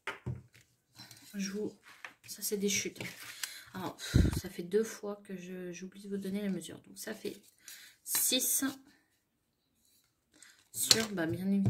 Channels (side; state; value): both; identical; correlation 1.00